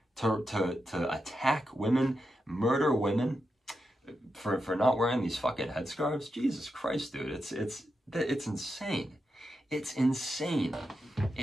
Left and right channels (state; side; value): normal; both; correlation 0.87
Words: to attack women, murder women for not wearing these fucking headscarves. Jesus Christ, dude, it's insane. It's insane.